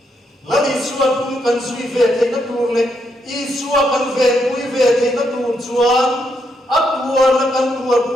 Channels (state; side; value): normal; both; correlation 0.78